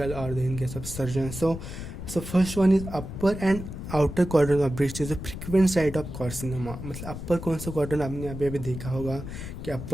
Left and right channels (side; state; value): left; noise; rumble, 9 dB below the sound